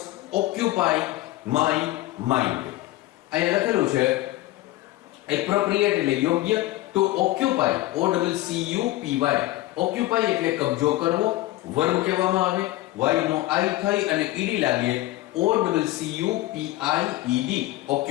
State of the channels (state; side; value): quieter; right; 17.0 dB